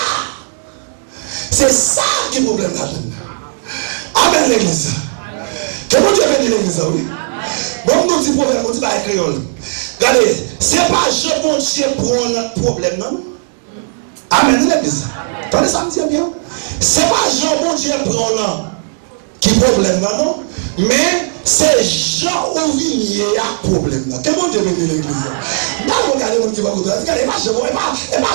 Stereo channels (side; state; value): left; silent; digital silence